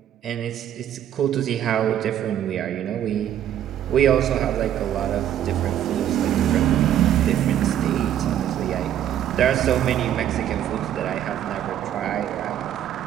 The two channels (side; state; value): left; quieter; 10.8 dB